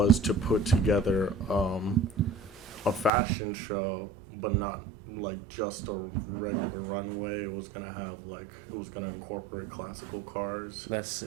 to put together a fashion show, but not like just a regular runway. It was gonna incorporate classical cars, That's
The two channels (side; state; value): left; drops out; at 3.1 s